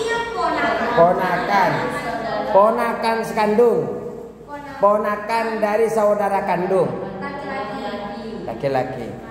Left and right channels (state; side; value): identical; both; correlation 1.00